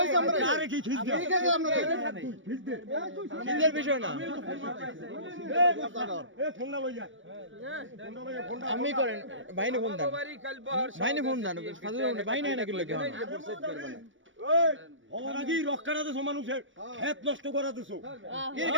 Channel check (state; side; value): late; left; 0.56 ms